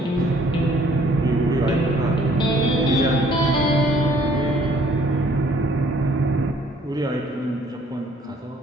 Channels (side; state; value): both; normal; correlation 0.60